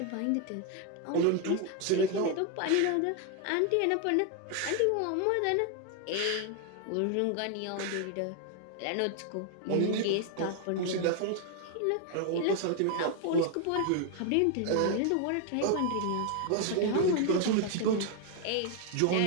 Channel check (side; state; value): both; different; correlation 0.01